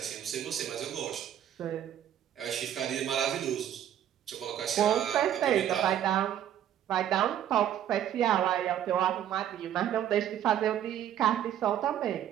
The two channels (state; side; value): quieter; left; 10.6 dB